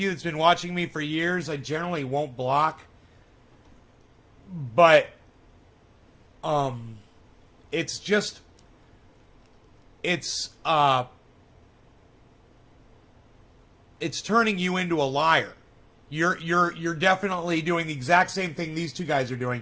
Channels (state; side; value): identical; both; correlation 1.00